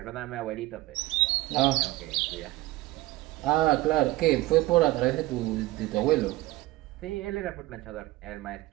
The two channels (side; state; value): left; quieter; 18.6 dB